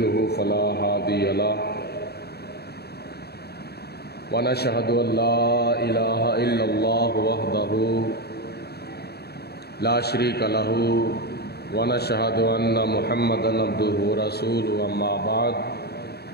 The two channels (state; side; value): late; right; 0.47 ms